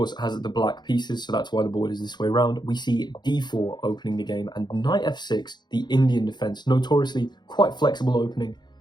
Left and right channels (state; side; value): late; right; 0.21 ms